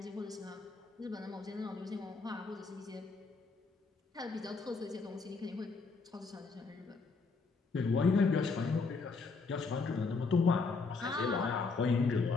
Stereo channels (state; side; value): quieter; right; 4.3 dB